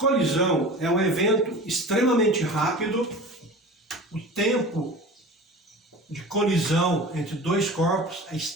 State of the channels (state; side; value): normal; both; correlation 0.36